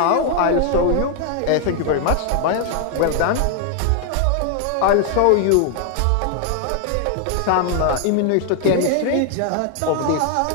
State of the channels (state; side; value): different; both; correlation 0.00